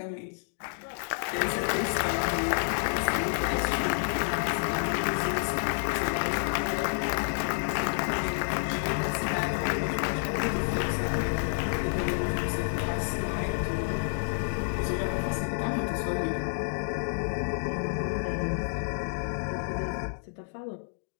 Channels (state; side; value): silent; right; digital silence